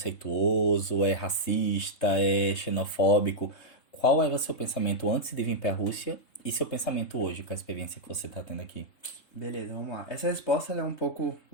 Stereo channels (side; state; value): right; late; 3.7 ms